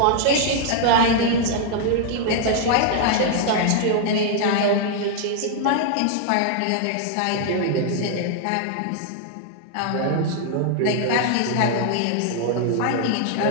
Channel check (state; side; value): different; both; correlation 0.00